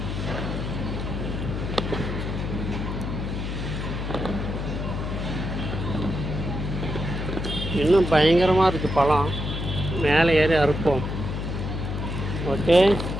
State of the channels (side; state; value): left; noise; hum, 4 dB below the sound